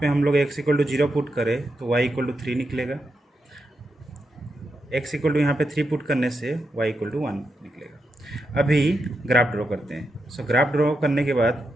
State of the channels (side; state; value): both; normal; correlation 0.85